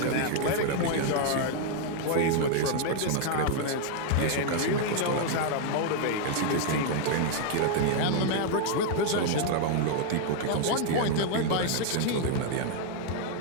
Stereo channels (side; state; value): both; different; correlation 0.00